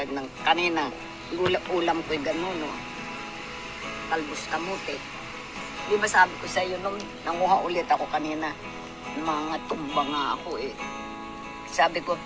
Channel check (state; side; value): identical; both; correlation 1.00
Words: ng kanina. Ulam ko'y gano'n, no? Talbos kamote. Di ba sabi ko sa iyo nung nanguha ulit ako kanina, mga tumba nga ako eh. Sabi ko,